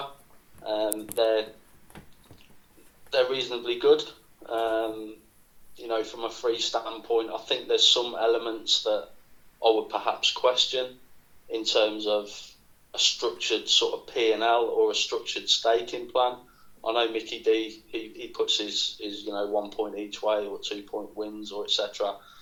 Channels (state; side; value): identical; both; correlation 1.00